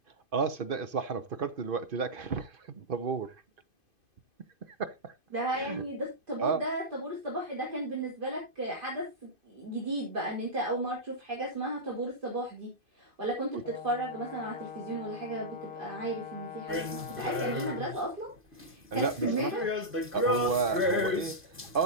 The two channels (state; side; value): late; left; 2.5 ms